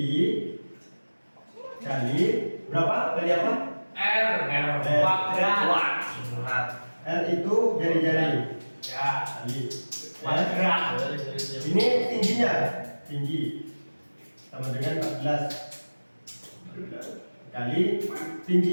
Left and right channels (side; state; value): both; inverted; correlation -1.00